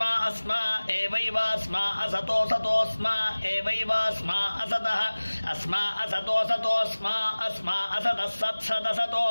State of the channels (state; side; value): inverted; both; correlation -1.00